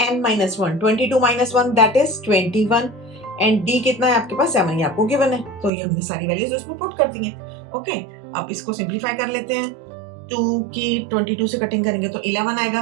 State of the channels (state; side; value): drops out; left; at 5.7 s